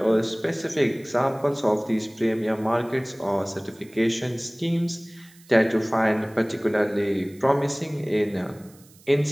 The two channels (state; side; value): noise; right; hiss, 26 dB below the sound